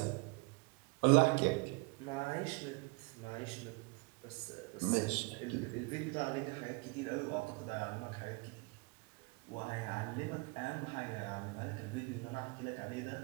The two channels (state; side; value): quieter; left; 28.7 dB